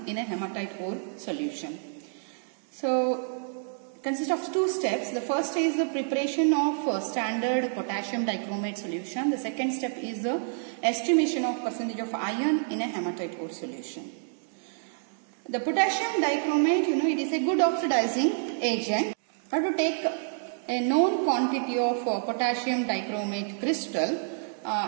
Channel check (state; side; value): silent; left; 59 dB below the other